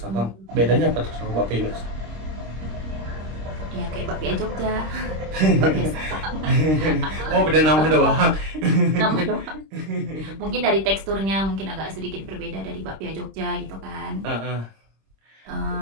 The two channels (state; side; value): late; left; 26 ms